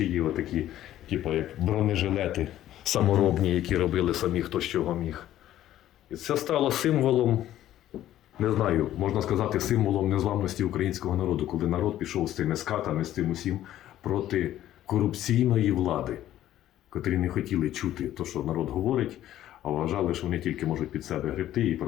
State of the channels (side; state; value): right; quieter; 12.8 dB